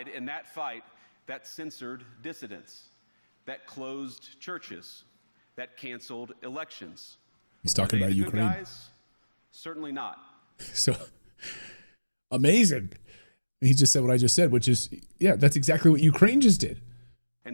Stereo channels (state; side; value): inverted; both; correlation -1.00